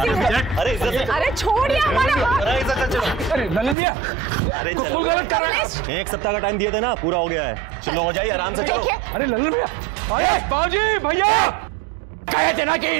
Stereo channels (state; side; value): drops out; left; at 3.8 s